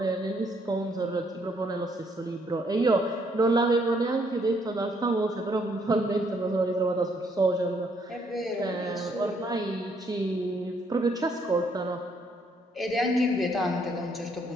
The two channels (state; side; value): normal; both; correlation 0.69